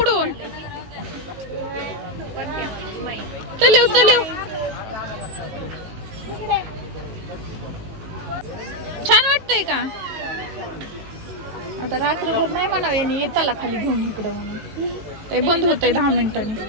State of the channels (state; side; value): late; left; 18 ms